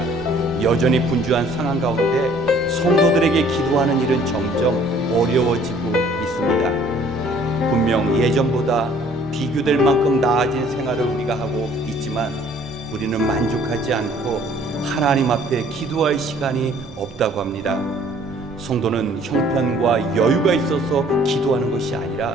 여전히 분주한 상황 가운데 성도들에게 기도하는 일은 점점 어려워지고 있습니다. 분명 예전보다 비교될 만큼 나아진 생활을 우리가 하고 있지만 우리는 만족하지 않고 하나님 앞에 기도할 시간이 없다고 합니다. 성도는 형편과 여유가 있어서 기도하는 것이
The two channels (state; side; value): normal; both; correlation 0.57